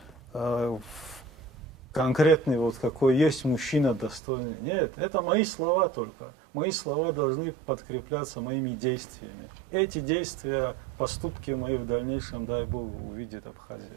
конкретный, вот какой есть мужчина достойный. Нет, это мои слова только. Мои слова должны подкрепляться моими действиями. Эти действия, поступки мои в дальнейшем, дай Бог, увидит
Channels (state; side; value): drops out; left; at 4.2 s